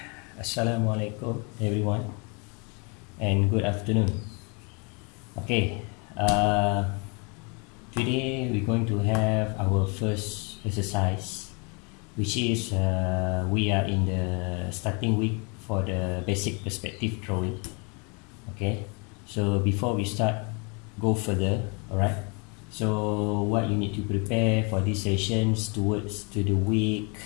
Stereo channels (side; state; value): right; quieter; 33.1 dB